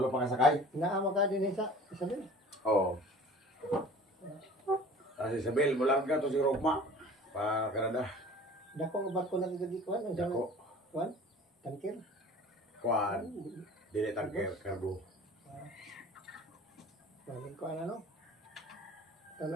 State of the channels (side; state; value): both; normal; correlation 0.45